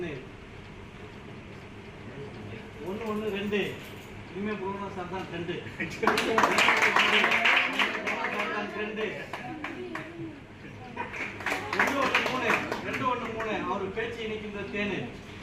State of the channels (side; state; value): both; identical; correlation 1.00